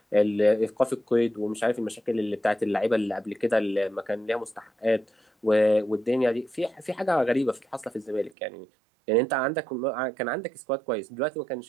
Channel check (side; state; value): left; drops out; at 8.3 s